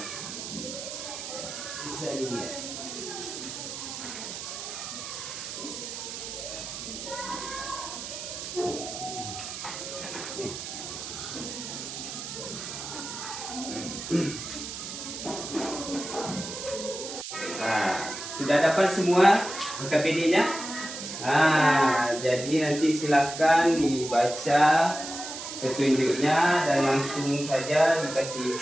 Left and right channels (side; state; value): right; noise; hiss, 8 dB below the sound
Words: Bisa dilihat. Nah, sudah dapat semua KPD-nya? Jadi nanti silakan dibaca petunjuknya dan langsung saja